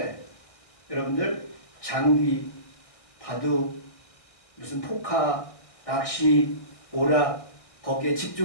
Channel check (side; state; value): right; late; 1.6 ms